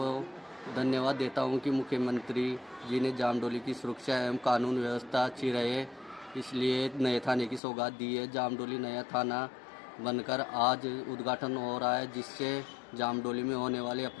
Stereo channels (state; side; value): drops out; right; at 7.6 s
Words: धन्यवाद देता हूं कि मुख्यमंत्री जी ने जामडोली की सुरक्षा एवं कानून व्यवस्था अच्छी रहे, इसलिए नए थाने की सौगात दी है। जामडोली नया थाना बनकर आज उद्घाटन हो रहा है, जिससे जामडोली में होने वाले